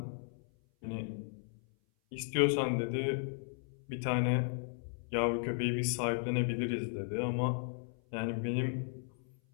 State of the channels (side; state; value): right; silent; 54 dB below the other